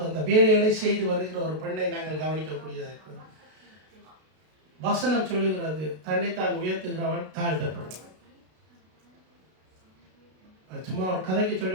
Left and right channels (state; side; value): late; left; 32 ms